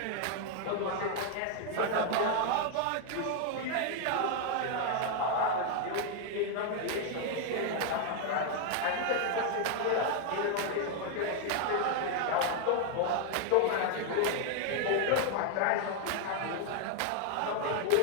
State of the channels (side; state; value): both; different; correlation 0.00